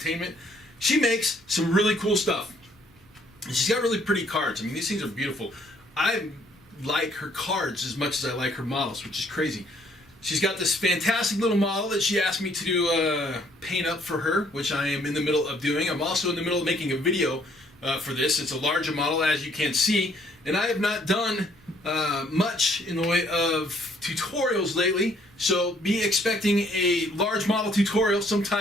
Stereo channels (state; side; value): normal; both; correlation 0.64